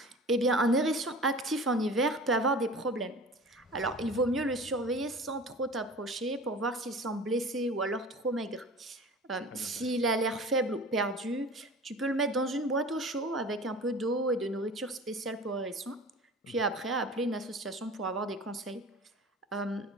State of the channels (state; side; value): normal; both; correlation 0.39